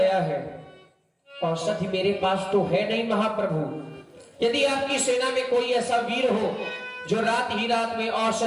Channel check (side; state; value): both; identical; correlation 1.00